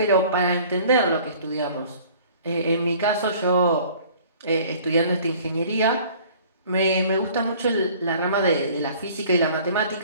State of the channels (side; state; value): both; inverted; correlation -0.51